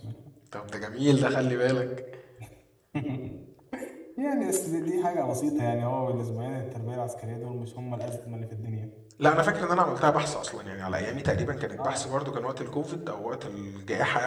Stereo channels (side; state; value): both; identical; correlation 1.00